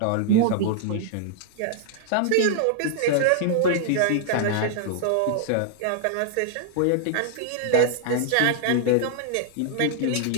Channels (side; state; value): both; different; correlation 0.00